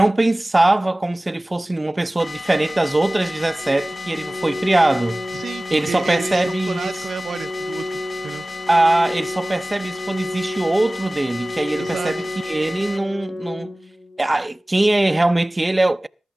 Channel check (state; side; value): normal; both; correlation 0.98